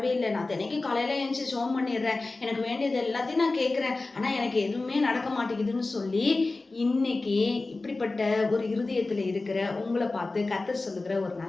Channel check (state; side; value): quieter; right; 3.3 dB